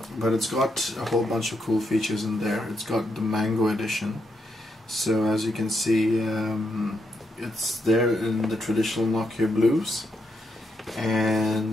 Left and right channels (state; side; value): normal; both; correlation 0.80